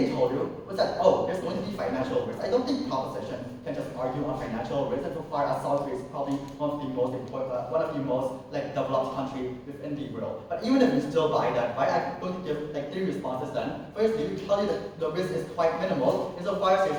told you was that, there's going to be financial risk. I don't think proposition can just argue on financial risk, and so far as South Korea is probably one of the most like developed countries within the world. But even if you still buy that, right, I'm going to give like three responses then. Firstly, we tell you that the risk is quite minimal, insofar as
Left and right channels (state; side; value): identical; both; correlation 1.00